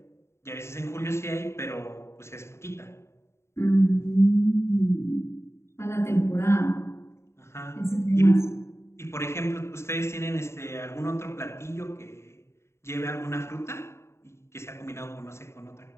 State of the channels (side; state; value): right; late; 0.13 ms